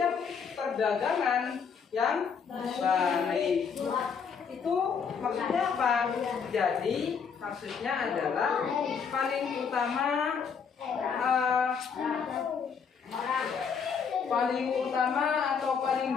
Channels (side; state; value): right; quieter; 6.4 dB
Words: perdagangan yang baik. Itu maksudnya apa? Jadi maksudnya adalah paling utama atau